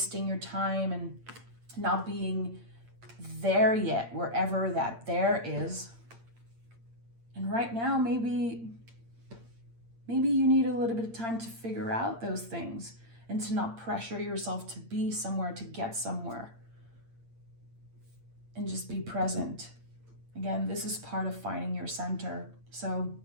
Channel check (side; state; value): left; late; 8.8 ms